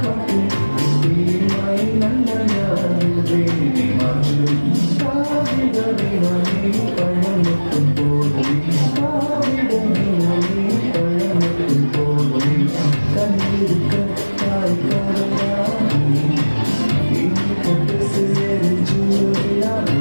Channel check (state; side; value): inverted; both; correlation -1.00